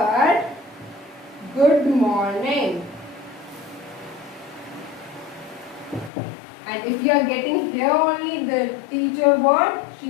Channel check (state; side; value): drops out; right; at 6.1 s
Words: good morning. And if you are getting here only the teacher word,